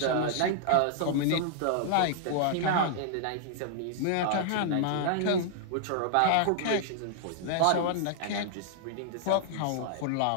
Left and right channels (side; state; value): both; different; correlation -0.01